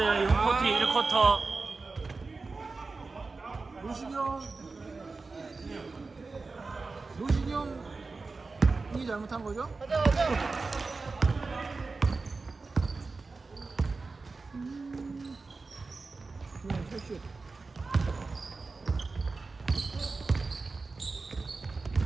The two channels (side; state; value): left; quieter; 3.9 dB